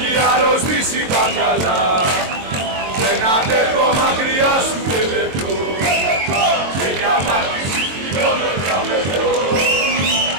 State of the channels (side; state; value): left; late; 22 ms